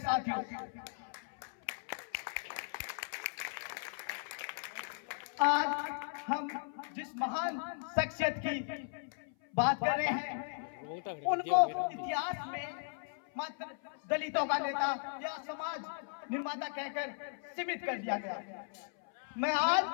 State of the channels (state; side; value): silent; right; 53 dB below the other